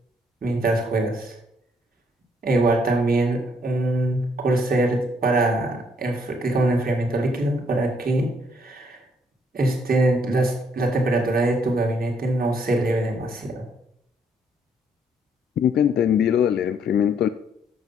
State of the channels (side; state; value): both; normal; correlation 0.69